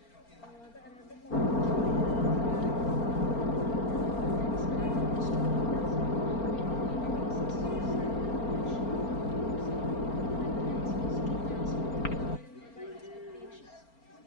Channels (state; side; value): late; right; 4.4 ms